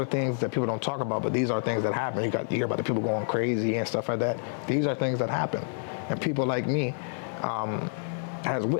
things that people don't talk about, but these are things that happen. You hear about the people going crazy and stuff like that. These are things that happen. And people like me has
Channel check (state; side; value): silent; right; 55 dB below the other